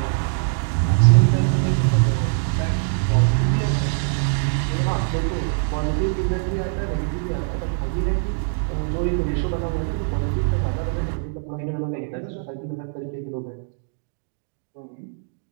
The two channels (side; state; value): left; silent; digital silence